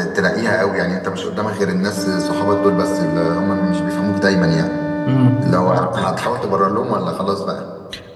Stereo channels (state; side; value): identical; both; correlation 1.00